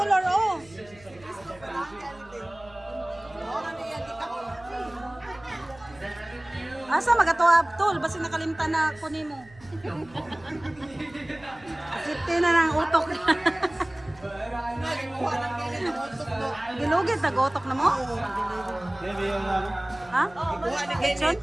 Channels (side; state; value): right; noise; hum, 23 dB below the sound